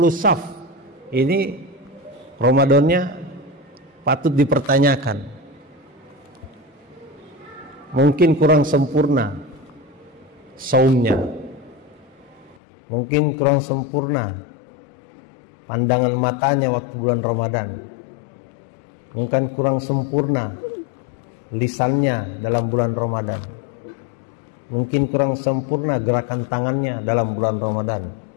saf, ini Ramadannya patut dipertanyakan. Mungkin kurang sempurna saumnya, mungkin kurang sempurna pandangan matanya waktu bulan Ramadan, mungkin kurang sempurna lisannya dalam bulan Ramadan, mungkin kurang sempurna gerakan tangannya dalam bulan Ramadan,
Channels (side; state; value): right; drops out; at 12.6 s